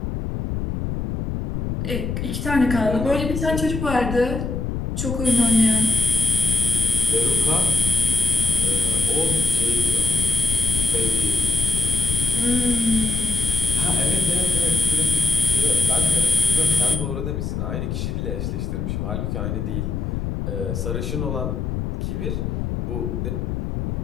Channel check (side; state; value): left; noise; rumble, 3 dB below the sound